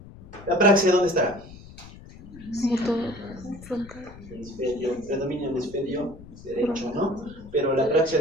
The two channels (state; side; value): noise; left; rumble, 18 dB below the sound